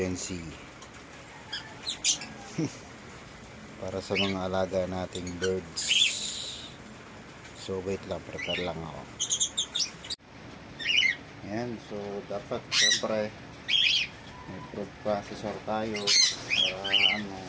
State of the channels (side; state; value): both; identical; correlation 1.00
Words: C. Para sa mga alaga nating birds. So wait lang, prepare lang ako. Ayan, so dapat syempre may food processor tayo para